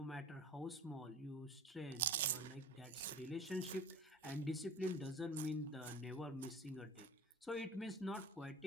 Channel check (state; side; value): normal; both; correlation 0.39